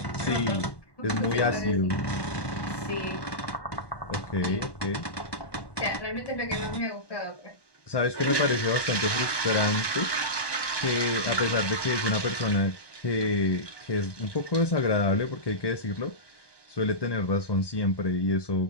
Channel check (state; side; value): late; right; 1.2 ms